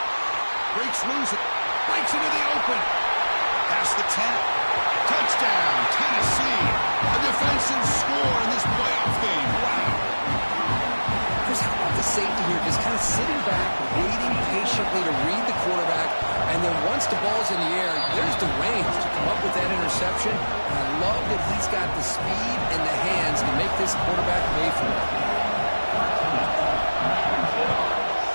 Breaks loose. Breaks into the open. Past the 10. Touchdown, Tennessee. A defensive score in this playoff game. Wow. Chris, how about the safety here? Just kind of sitting back, waiting patiently to read the quarterback. And then once the ball's in the air, there's the range to come up with that interception. And I love that he's got the speed and the hands to make this quarterback pay for it.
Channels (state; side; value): inverted; both; correlation -1.00